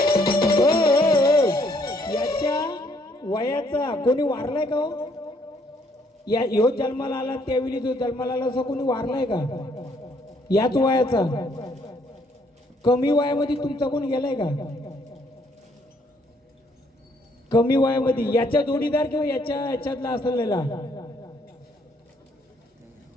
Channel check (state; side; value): normal; both; correlation 0.67